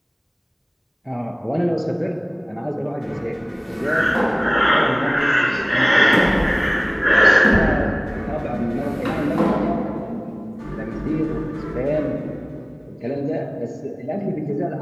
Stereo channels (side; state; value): both; identical; correlation 1.00